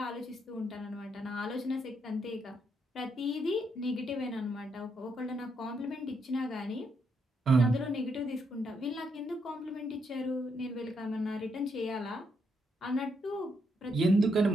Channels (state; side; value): normal; both; correlation 0.77